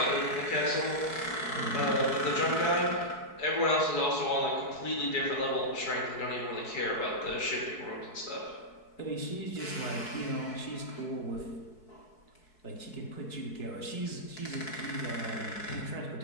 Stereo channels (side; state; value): right; late; 4.7 ms